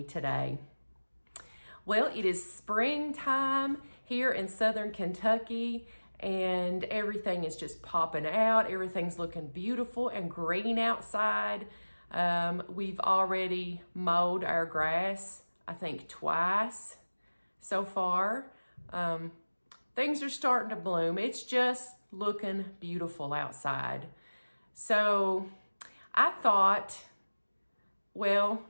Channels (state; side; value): inverted; both; correlation -1.00